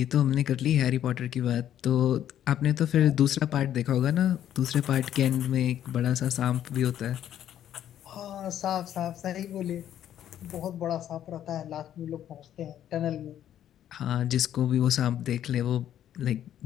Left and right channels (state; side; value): quieter; right; 10.9 dB